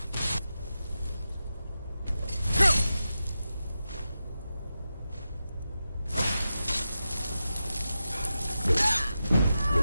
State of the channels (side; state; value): both; inverted; correlation -0.91